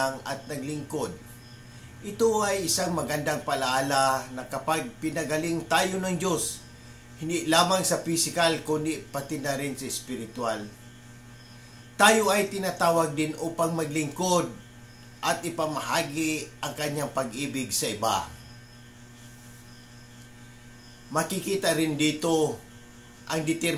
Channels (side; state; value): both; identical; correlation 1.00